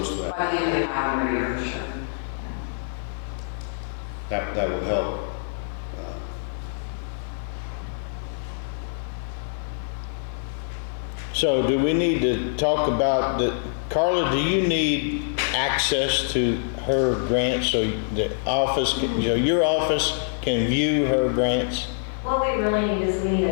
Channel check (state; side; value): silent; right; 62 dB below the other